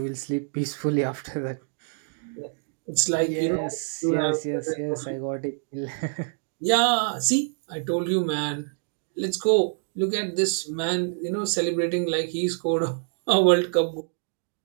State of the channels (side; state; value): left; silent; digital silence